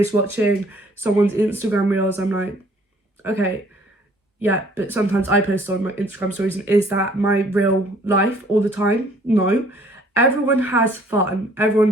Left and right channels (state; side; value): normal; both; correlation 0.58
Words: watching someone's Instagram reels, I'm like, okay, yeah, but sometimes I post on my Instagram stories, and is that my real life all the time? No. Everyone has fun,